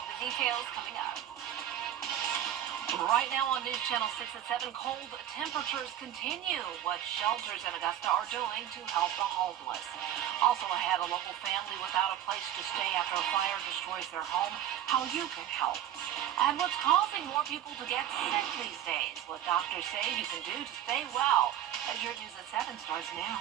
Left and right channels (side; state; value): left; quieter; 11.2 dB